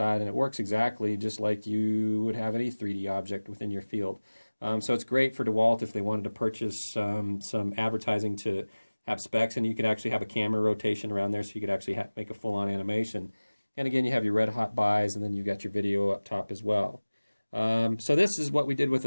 and it works exactly just like you would have any 3D object within your field. So it's great for DeWalt if they wanted to purchase some advertising to have specs, and you could actually have a camera rotation around there, so you could actually make a full-on animation. And again, you have your red hot buys, and then you've got your video up top as well. So this is what we did with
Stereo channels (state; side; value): inverted; both; correlation -1.00